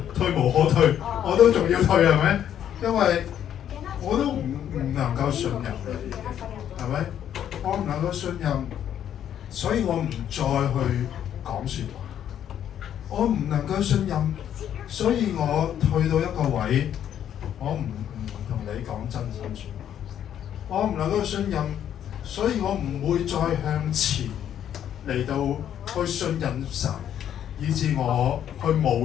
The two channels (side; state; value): right; quieter; 10.0 dB